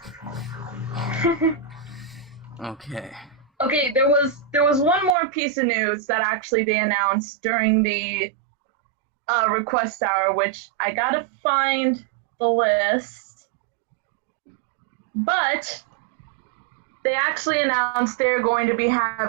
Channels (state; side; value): drops out; left; at 5.2 s